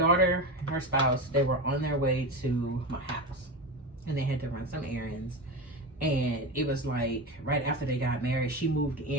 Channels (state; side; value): normal; both; correlation 0.22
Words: and her spouse, they were on their way to my house, and they had to run some errands. And it was like right after they got married, she moved